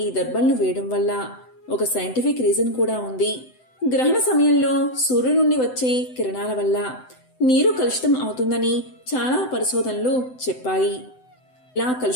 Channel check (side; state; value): right; late; 7.9 ms